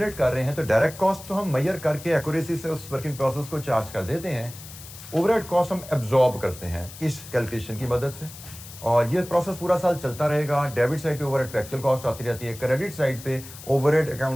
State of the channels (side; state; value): left; noise; hiss, 16 dB below the sound